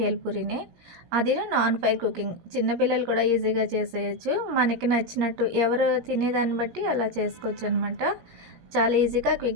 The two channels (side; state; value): left; late; 17 ms